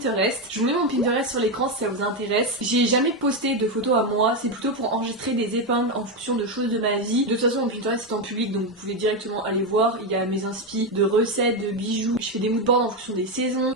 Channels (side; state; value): both; normal; correlation 0.09